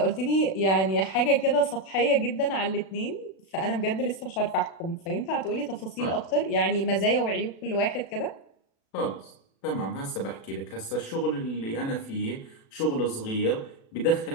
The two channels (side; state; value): right; late; 36 ms